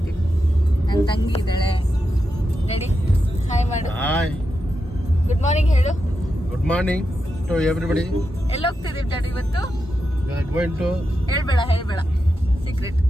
ನನ್ನ ತಂಗಿ ಇದ್ದಾಳೆ. ರೆಡಿ? ಹಾಯ್ ಮಾಡು. ಹಾಯ್. ಗುಡ್ ಮಾರ್ನಿಂಗ್ ಹೇಳು. Good morning to everybody. ಎಲ್ಲಿ ಹೋಗ್ತಿದ್ದೀವಿ ಡ್ಯಾಡಿ ಇವತ್ತು? ಗೋಯಿಂಗ್ ಟು ಹೇಳ್ಬೇಡ ಸೀಕ್ರೆಟ್.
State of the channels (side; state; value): both; normal; correlation 0.87